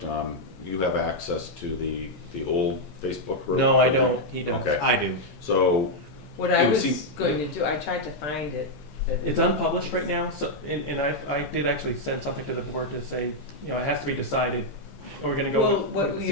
you have access to the old Facebook group? No, I don't, he does. Okay. I do. So, What I It would was seem- going to do, I tried to find it. but- It's unpublished right now, so, and I did actually send something to the board to say, you know, it has to be decided, are we gonna go Well, with what we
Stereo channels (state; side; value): normal; both; correlation -0.02